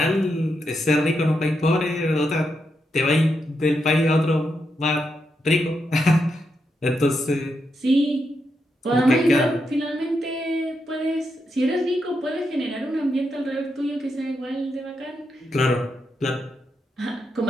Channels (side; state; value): both; normal; correlation 0.83